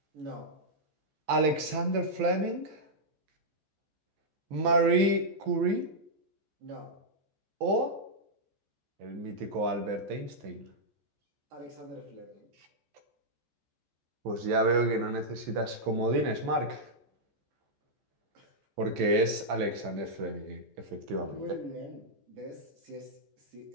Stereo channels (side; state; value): left; late; 14 ms